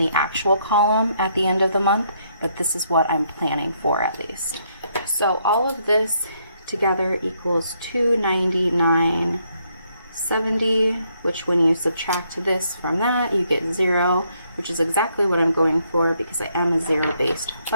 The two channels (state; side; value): inverted; both; correlation -0.73